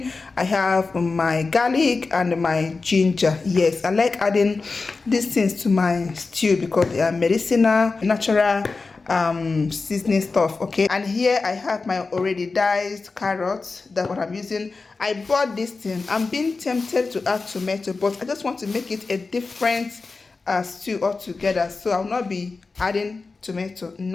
I have my garlic and my ginger. Yes, I like adding these things to my stew because they are medicinal, natural seasoning stuff. Okay, and here I have my already diced carrots. That's what I'm using. I bought this thing. I'm being tempted to add tomato, but I just want to make it a different stew altogether, so I'll not be adding tomato.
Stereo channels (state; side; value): quieter; right; 4.0 dB